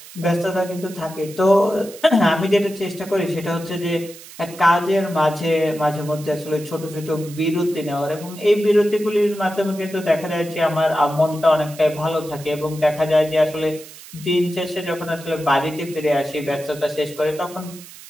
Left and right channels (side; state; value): right; noise; hiss, 18 dB below the sound